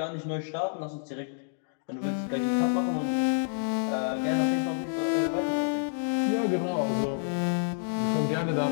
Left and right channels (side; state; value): right; silent; digital silence